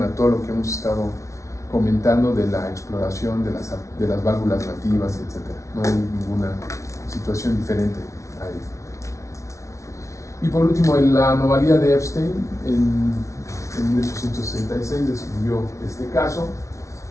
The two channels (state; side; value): late; right; 0.14 ms